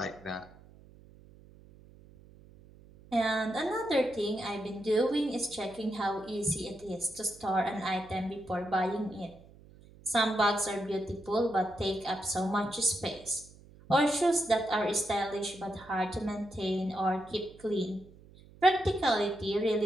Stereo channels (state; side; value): noise; right; hum, 23 dB below the sound